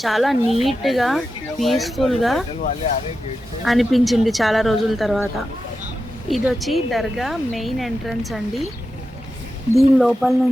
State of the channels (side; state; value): both; normal; correlation 0.90